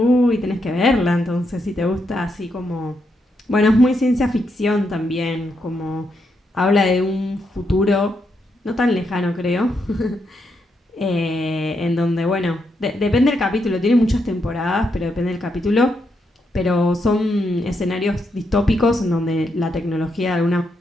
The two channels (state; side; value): normal; both; correlation 0.80